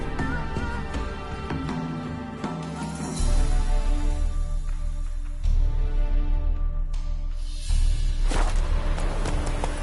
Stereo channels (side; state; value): both; identical; correlation 1.00